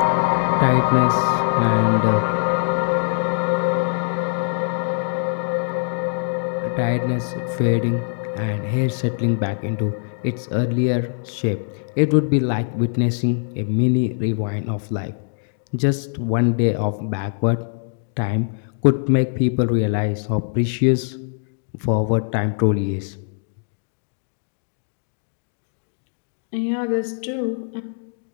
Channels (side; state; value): right; silent; digital silence